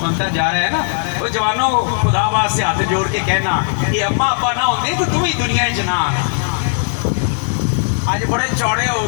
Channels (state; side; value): silent; right; 68 dB below the other